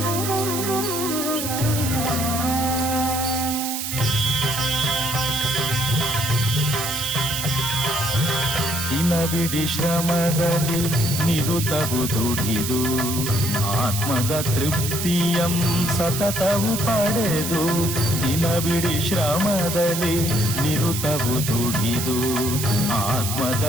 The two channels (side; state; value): right; noise; hiss, 4 dB below the sound